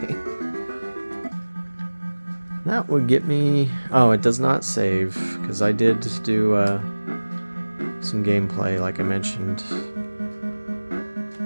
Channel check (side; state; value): both; inverted; correlation -1.00